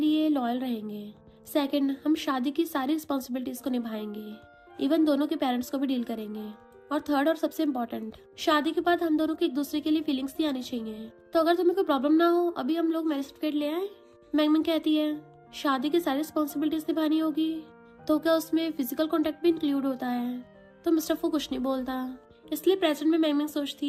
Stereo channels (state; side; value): identical; both; correlation 1.00